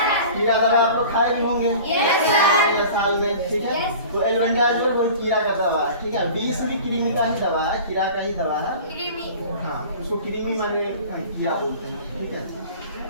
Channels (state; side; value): inverted; both; correlation -0.41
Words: कीड़ा दवा आप लोग खाए भी होंगे साल में, ठीक है। तो एल्बेंडाजोल वो कीड़ा का दवा है, ठीक है। डीस भी कृमि का ही दवा है, कीड़ा का ही दवा है, हाँ, उसको कृमि माने कीड़ा बोलते हैं, ठीक है।